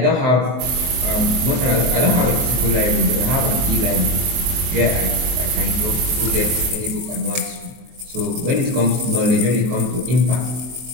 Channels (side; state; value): left; late; 24 ms